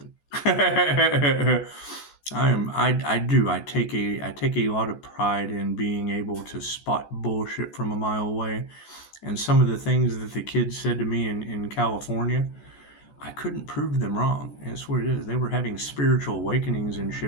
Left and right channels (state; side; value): late; right; 14 ms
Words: I take a lot of pride in being able to spot bullshit from a mile away. And some of the things that the kids said to me in California, I couldn't prove them wrong. And that's what it is. They were having spiritual awakenings and